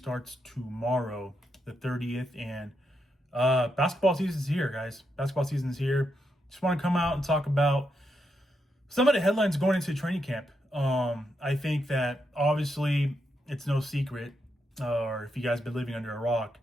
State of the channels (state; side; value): normal; both; correlation 0.82